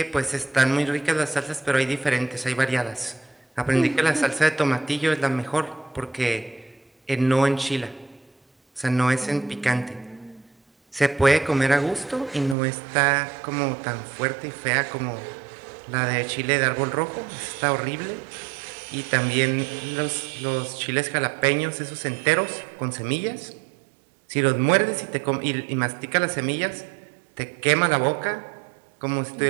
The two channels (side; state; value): left; drops out; at 12.6 s